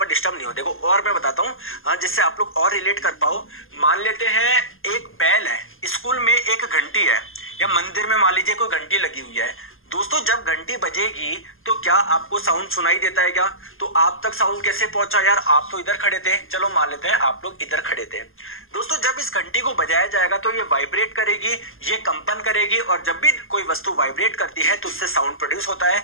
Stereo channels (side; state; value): right; late; 0.60 ms